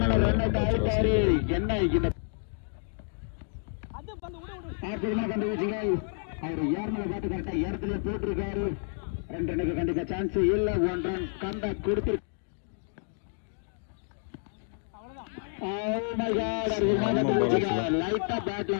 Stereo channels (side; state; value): right; silent; 58 dB below the other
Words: அவர் ஏர்மலை காட்டு கரெக்டா இடத்துல போட்டிருக்காரு. 2 ரனுக்கு கண்டிப்பா சான்ஸ் இல்ல. 1 ரன் கண்டா கொடுத்து லைட்டா பேட்ல